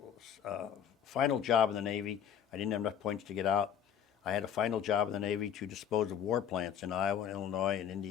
final job in the Navy. I didn't have enough points to get out. I had a final job in the Navy to dispose of war plants in Iowa, Illinois, and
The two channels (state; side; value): quieter; right; 8.9 dB